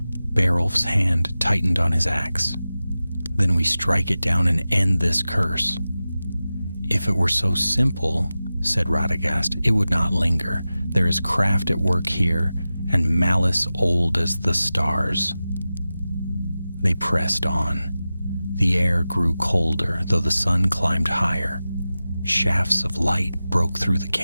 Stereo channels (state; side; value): inverted; both; correlation -0.95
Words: Beowulf's hand tightened on his axe. "Then we strike it down and end this curse." "If it were so simple," said Radagast, "it would not linger. There is craft at work here, and malice old as the stars." They pressed on. The air grew colder, though the sun climbed higher. Shafts of light broke through the